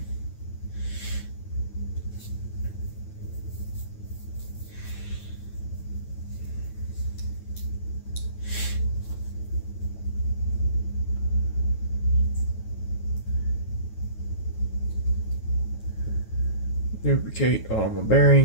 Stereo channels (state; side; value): late; right; 9.2 ms